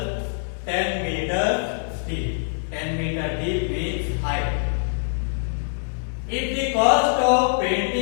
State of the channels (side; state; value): right; silent; digital silence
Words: 10 meter deep. 10 meter deep means height. If the cost of